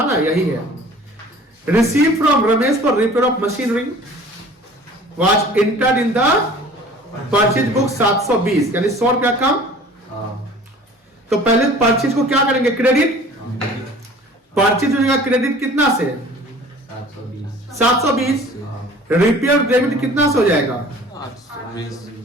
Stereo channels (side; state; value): both; normal; correlation 0.47